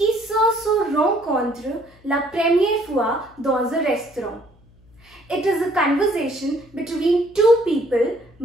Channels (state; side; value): noise; left; hum, 28 dB below the sound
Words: se rencontrent la première fois dans un restaurant. It is a conversation between two people,